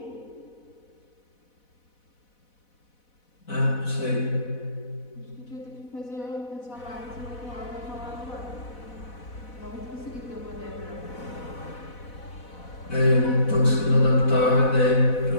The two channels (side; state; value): right; late; 4.1 ms